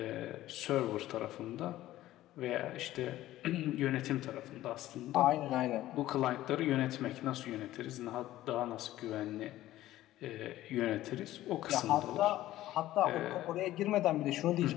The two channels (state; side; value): quieter; right; 14.8 dB